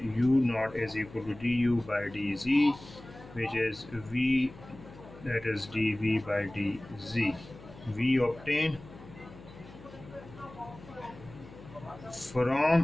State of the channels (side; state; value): left; noise; hum, 18 dB below the sound